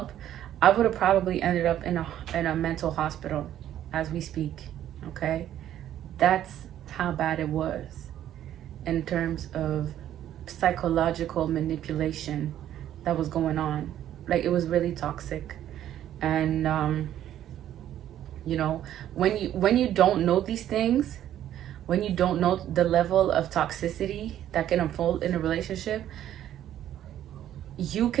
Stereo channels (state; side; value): quieter; left; 11.6 dB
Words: I would have probably ended up in a mental hospital as we speak. Okay, that's how bad it was in terms of psychological manipulation that was going on. Like, it was really toxic. And you know, when you don't know these things, when you don't know the level of toxicity that can unfold in a relationship, you